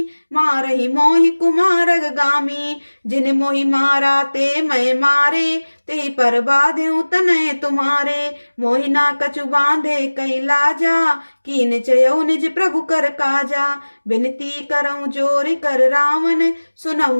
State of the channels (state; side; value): inverted; both; correlation -1.00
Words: मारहि मोहि कुमारग गामी। जिन मोहि मारा ते मैं मारे, तेहि पर बाध्यु तनय तुम्हारे। मोहि ना कछु बांधे कई लाजा, कीन चयऊ निज प्रभु कर काजा। बिनती करऊं जोरि कर रावण,